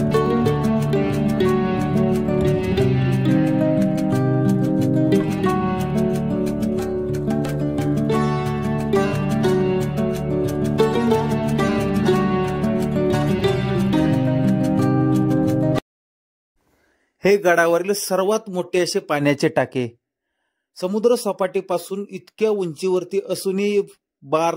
हे गडावरील सर्वात मोठे असे पाण्याचे टाके समुद्र सपाटीपासून इतक्या उंचीवरती असूनही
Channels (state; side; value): identical; both; correlation 1.00